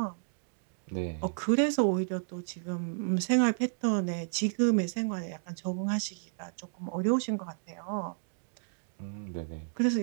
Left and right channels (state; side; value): silent; left; digital silence